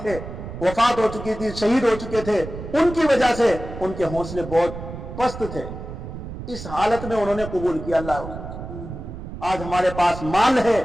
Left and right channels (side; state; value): right; noise; rumble, 10 dB below the sound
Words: تھے، وفات ہو چکی تھی، شہید ہو چکے تھے، ان کی وجہ سے ان کے حوصلے بہت پست تھے، اس حالت میں انہوں نے قبول کیا اللہ۔ آج ہمارے پاس مال ہے،